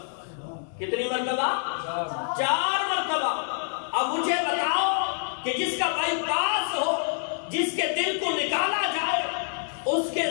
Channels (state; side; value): silent; right; digital silence